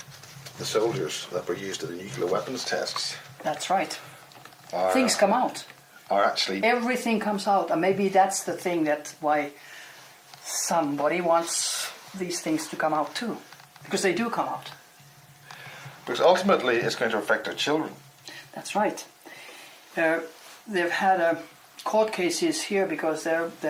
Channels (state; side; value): identical; both; correlation 1.00